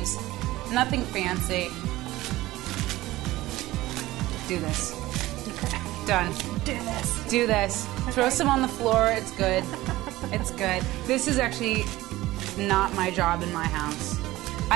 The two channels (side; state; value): left; quieter; 17.5 dB